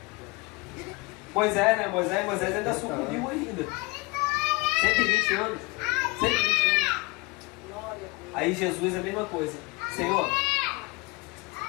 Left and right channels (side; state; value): right; quieter; 25.1 dB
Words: Deus. Moisés, né? Moisés ainda sucumbiu ainda. 120 anos. 120 anos. Aí Jesus é a mesma coisa. Senhor,